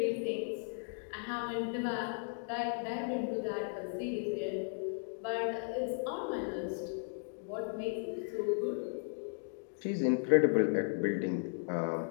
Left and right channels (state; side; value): silent; right; 54 dB below the other